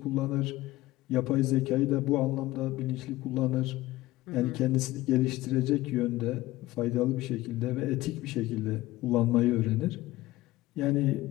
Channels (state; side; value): quieter; right; 17.5 dB